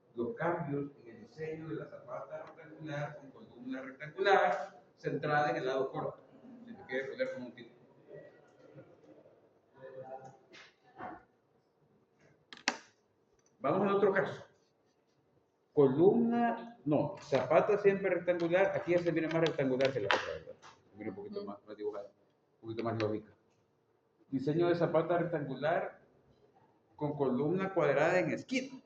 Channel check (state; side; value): identical; both; correlation 1.00